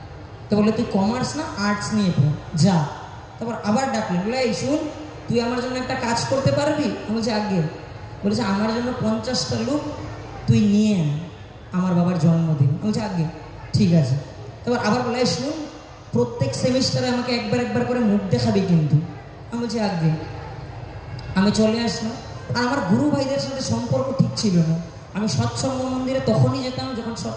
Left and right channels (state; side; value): identical; both; correlation 1.00